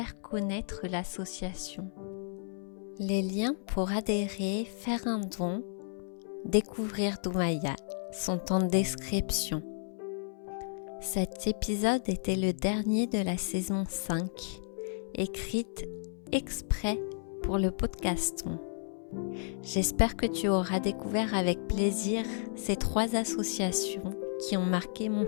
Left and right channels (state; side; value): silent; right; 56 dB below the other